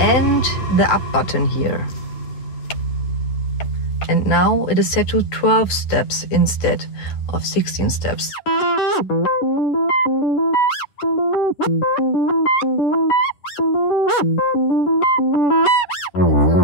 the up button here. And now it is set to 12 steps instead of 16 steps.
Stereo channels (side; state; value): right; late; 10 ms